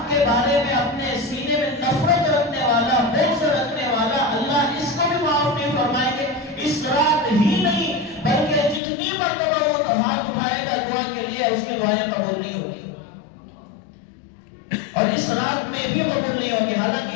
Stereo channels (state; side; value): drops out; right; at 8.8 s